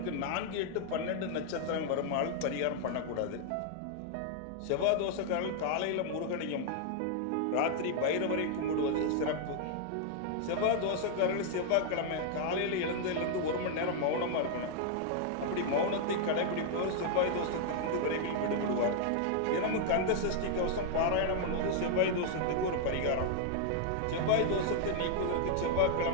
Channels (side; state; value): both; different; correlation 0.00